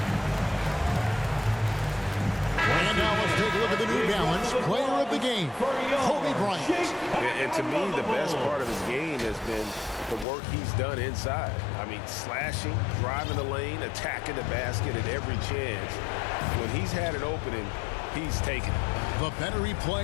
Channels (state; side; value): drops out; right; at 10.2 s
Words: And now let's take a look at the New Balance player of the game, Kobe Bryant. And to me, the best part of his game has been the work he's done inside. I mean, slashing, driving the lane, attacking the basket at every chance. When he's had an opening, he's taken it. The better he